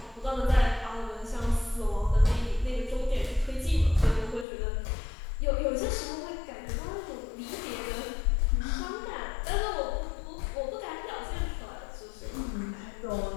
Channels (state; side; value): drops out; right; at 4.5 s